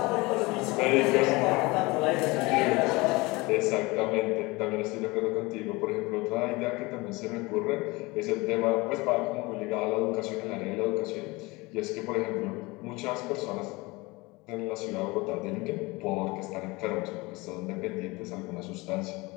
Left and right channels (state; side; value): quieter; right; 23.5 dB